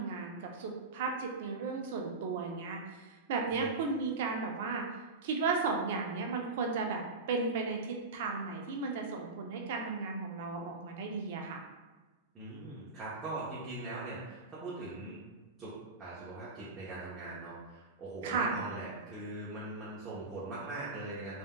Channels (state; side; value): quieter; left; 3.6 dB